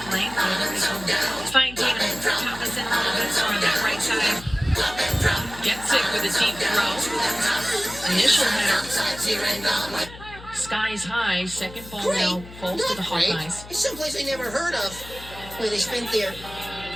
lane. Whether they can find Tatum Thomas in a little bit more on that right side. Gets it with a deep throw. Initial header. Skies high. Second ball now falls to the Hawkeyes. It's someplace I never heard of. Where they spent their...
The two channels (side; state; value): left; noise; hum, 16 dB below the sound